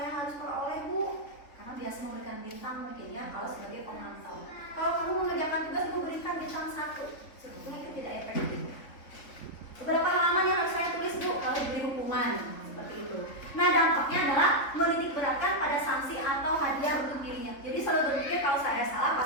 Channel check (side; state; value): right; late; 3.7 ms